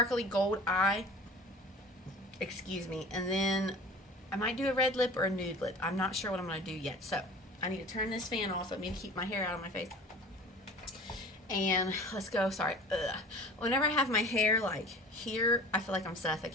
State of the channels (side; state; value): both; normal; correlation 0.41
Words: gold eye. Excuse me. And then I might do a red lip or a nude lip. I'm not sure what I'm going to do yet. So I need to turn this fan off. I need to keep my hair out of my face. And let's go. Sorry. Whenever I have my hair like here, I feel like I'm